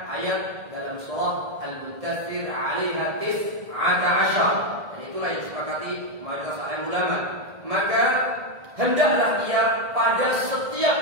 ayat dalam surah Al-Muddathir 'alaiha 19. Dan itulah yang disepakati mayoritas alim ulama. Maka hendaklah ia pada setiap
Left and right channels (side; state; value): left; late; 1.7 ms